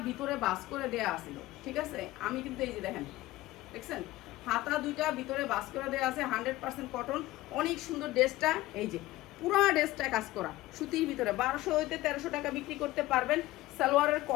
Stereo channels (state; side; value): quieter; right; 17.4 dB